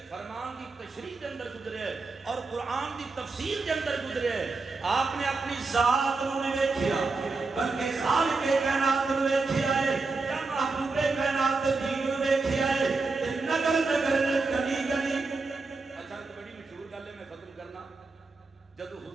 فرمان دی تشریح دے اندر گزرے ہے اور قرآن دی تفسیر دے اندر گزرے ہے. آپ نے اپنی ذات نو نہیں ویکھیا بلکہ خالق کائنات نو ویکھیا ہے, یا محبوب کائنات دین نو ویکھیا ہے. نگر نگر گلی گلی. اچھا تو بڑی مشہور گل ہے, میں ختم کرنا. جدو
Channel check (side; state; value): left; quieter; 3.9 dB